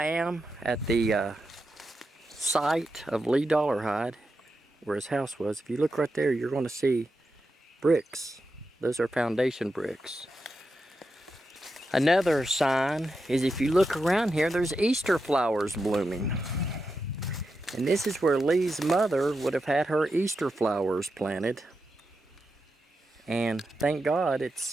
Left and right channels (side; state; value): both; normal; correlation 0.88